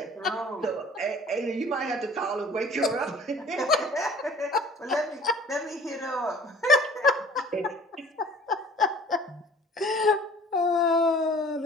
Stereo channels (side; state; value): both; normal; correlation 0.49